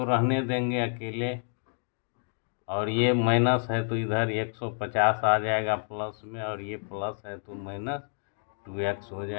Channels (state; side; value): silent; right; 57 dB below the other